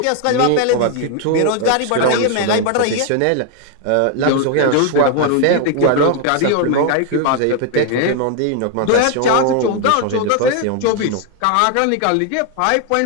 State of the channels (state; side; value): different; both; correlation 0.00